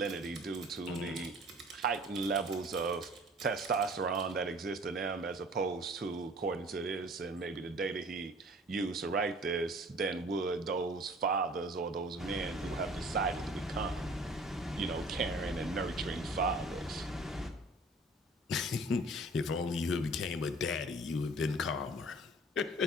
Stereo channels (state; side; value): normal; both; correlation 0.49